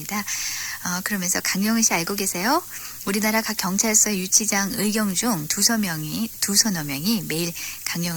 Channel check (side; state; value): both; identical; correlation 1.00